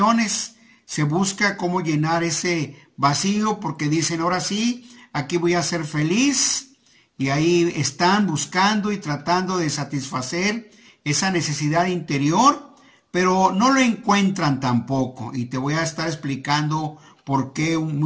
se busca cómo llenar ese vacío porque dicen, ahora sí, aquí voy a ser feliz. Y ahí están buscando y tratando de satisfacer esa necesidad interior, pero no lo encuentran tampoco. Y te voy a estar explicando por qué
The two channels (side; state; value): both; identical; correlation 1.00